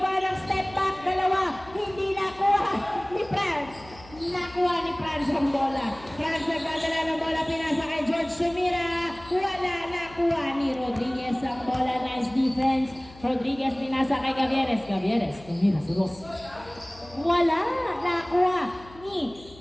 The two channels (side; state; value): left; noise; hum, 21 dB below the sound